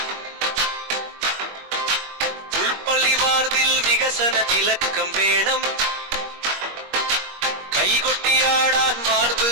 ഉൾപ്പള്ളി വാർതിൽ വികസന തിലക്കം വേണം കൈകൊട്ടിയാടാൻ വാർത്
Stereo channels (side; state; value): left; late; 21 ms